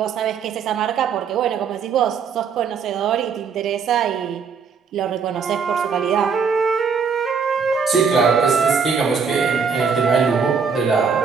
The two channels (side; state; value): left; quieter; 5.9 dB